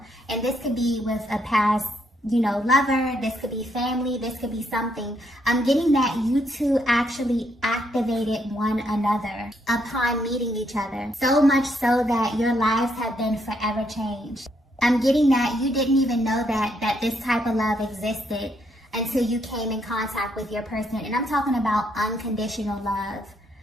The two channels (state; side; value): normal; both; correlation 0.74